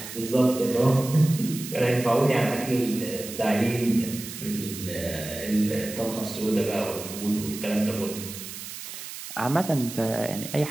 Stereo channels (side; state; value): right; noise; hiss, 10 dB below the sound